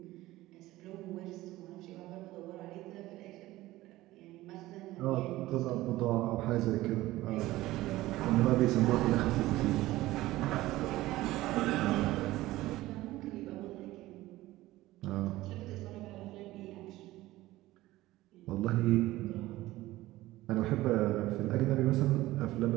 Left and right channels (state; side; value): quieter; left; 17.2 dB